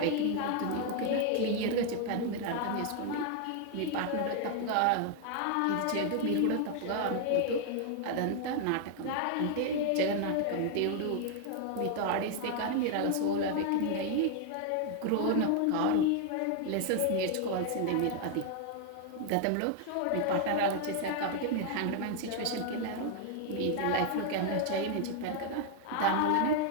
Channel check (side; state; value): both; different; correlation 0.00